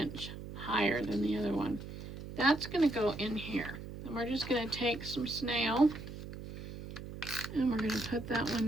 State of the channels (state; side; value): noise; right; hum, 10 dB below the sound